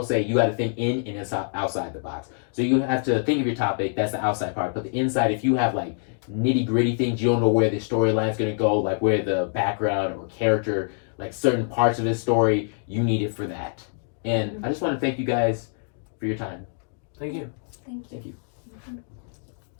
say you got to think in and inside, outside the box. So you have to think of your topic. That's the outside part. But the inside, if you have like nitty gritty things, you don't know where the storyline is going to go, like where the background or character, like certain parts of his story, you need it for that. And I just want to thank you guys for your time. Thank you. Thank you.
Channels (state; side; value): silent; right; digital silence